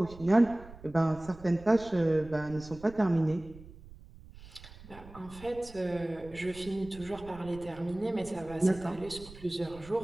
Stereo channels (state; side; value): noise; right; rumble, 18 dB below the sound